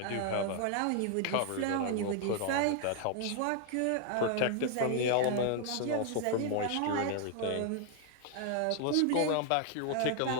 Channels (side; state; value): both; different; correlation 0.00